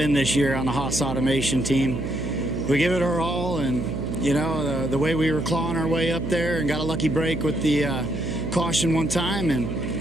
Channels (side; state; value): right; noise; hum, 5 dB below the sound